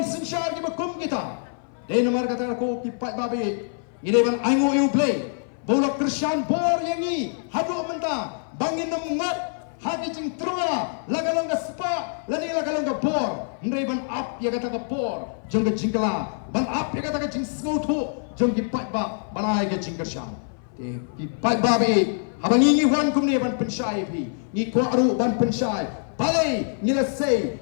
sinshar ki bakum kita de nomor kata ko ki pat babe ngide ban aingo yo play bola Christian bor yangi hadu menta bangin ngat hagi jing trua lagalong ka spa lani lagalong ka bor ndai ban up ya kata ka bor jong ka jingkala ban up ya kata ka jing snotu jong ki pat ba banai ka jing kershan te ki pat ba be habangi ngi wan kum ne ban penshai phi ngi ko aru ban penshai balai ngila sei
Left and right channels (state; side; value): silent; right; 58 dB below the other